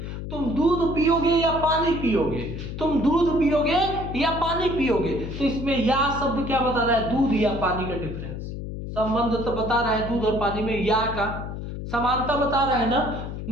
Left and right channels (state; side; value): noise; left; hum, 7 dB below the sound